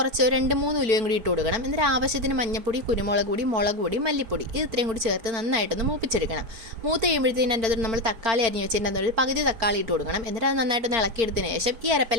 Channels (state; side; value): late; left; 4.6 ms